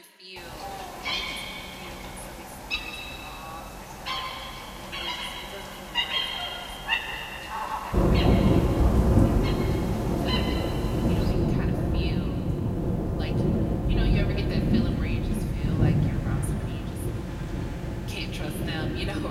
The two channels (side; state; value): both; identical; correlation 1.00